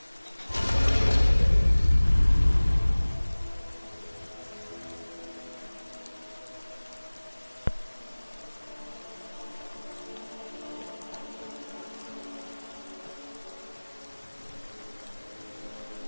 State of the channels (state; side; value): inverted; both; correlation -1.00